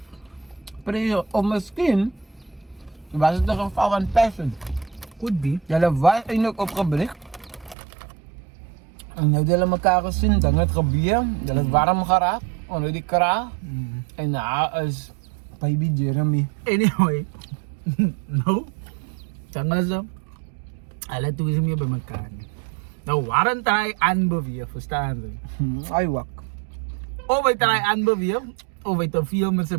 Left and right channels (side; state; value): left; drops out; at 7.8 s